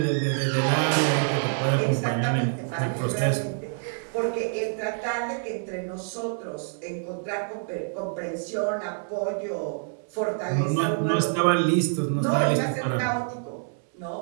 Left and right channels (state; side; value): silent; left; digital silence